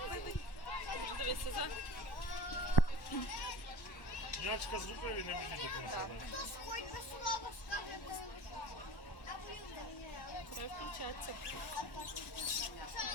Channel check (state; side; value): late; right; 1.1 ms